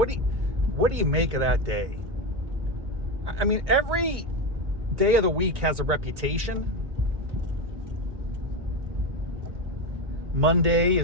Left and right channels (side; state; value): left; late; 1.9 ms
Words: do you make of that day? I mean, every day of the week has a reputation. Monday